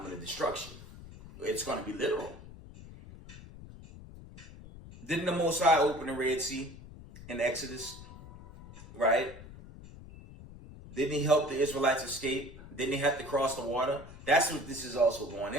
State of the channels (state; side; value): noise; left; rumble, 16 dB below the sound